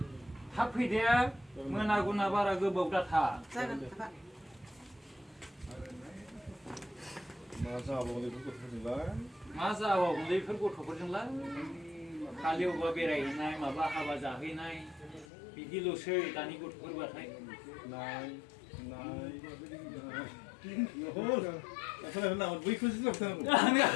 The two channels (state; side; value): drops out; right; at 15.2 s